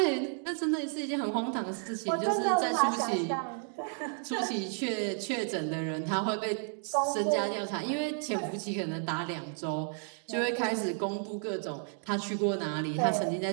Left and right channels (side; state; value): left; silent; 56 dB below the other